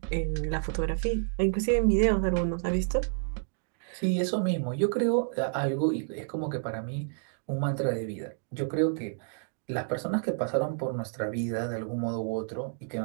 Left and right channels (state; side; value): silent; left; digital silence